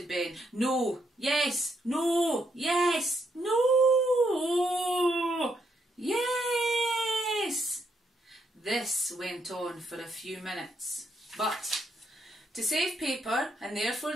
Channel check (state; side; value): normal; both; correlation 0.76